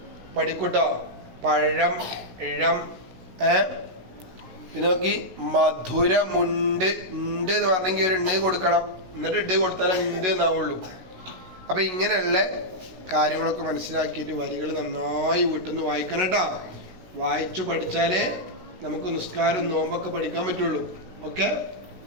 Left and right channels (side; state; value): left; late; 16 ms